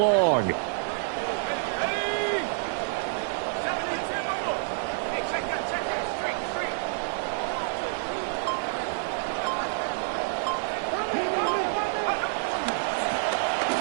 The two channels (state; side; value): silent; left; digital silence